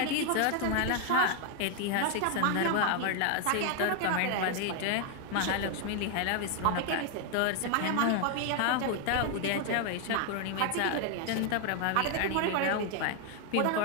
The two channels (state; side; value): different; both; correlation 0.00